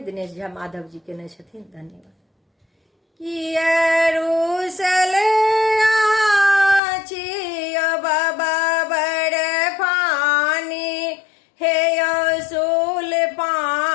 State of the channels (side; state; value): right; drops out; at 6.8 s